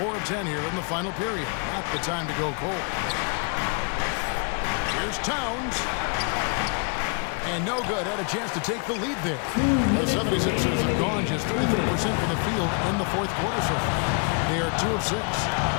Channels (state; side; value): quieter; right; 36.8 dB